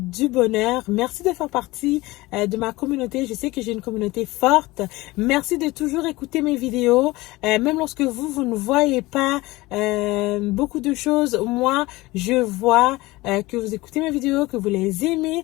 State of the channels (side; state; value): right; quieter; 20.3 dB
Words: bonheur. Merci de faire partie de ma communauté. Je sais que j'ai une communauté forte. Merci de toujours écouter mes vidéos. Même lorsque vous ne voyez pas beaucoup de choses, moi, je vois que vous écoutez mes vidéos, que vous les aimez.